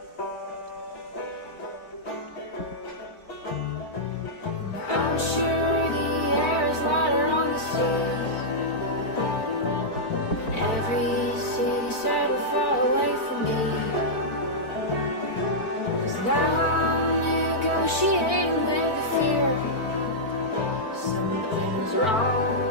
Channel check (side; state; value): right; late; 4.5 ms